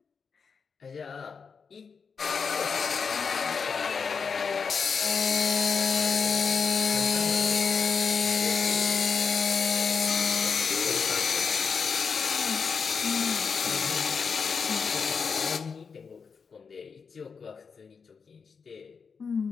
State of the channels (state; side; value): quieter; right; 5.6 dB